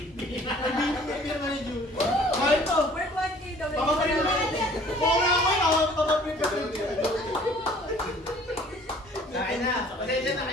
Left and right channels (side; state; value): both; normal; correlation 0.53